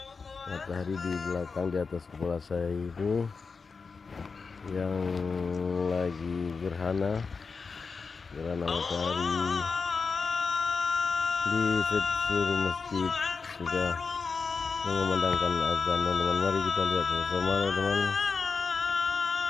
matahari di belakang di atas kepala saya ini yang lagi gerhana matahari. Di seluruh masjid sudah mengumandangkan azan, teman-teman. Mari kita lihat sama-sama, teman-teman.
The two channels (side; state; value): right; quieter; 4.9 dB